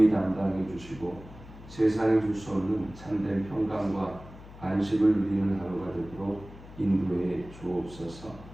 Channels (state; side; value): noise; left; hum, 17 dB below the sound